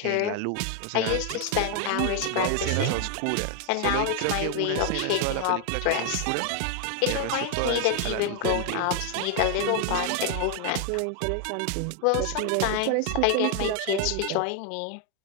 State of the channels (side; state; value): both; different; correlation 0.00